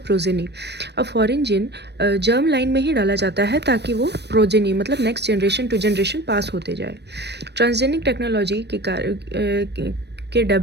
progeny. अब फॉरेन जीन जर्म लाइन में ही डाला जाता है ताकि वो प्रोजेनी मतलब next generation to generation pass होते जाए। ट्रांसजेनिक टेक्नोलॉजी के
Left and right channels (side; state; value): left; late; 0.49 ms